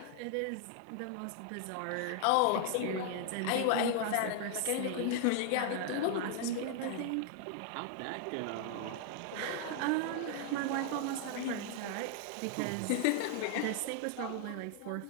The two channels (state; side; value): different; both; correlation 0.00